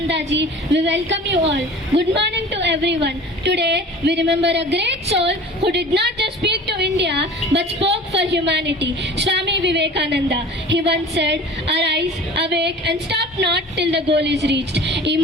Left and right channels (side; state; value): both; normal; correlation 0.41